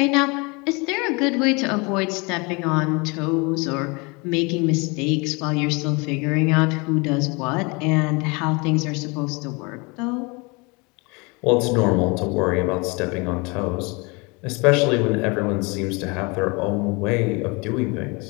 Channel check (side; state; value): right; quieter; 28.4 dB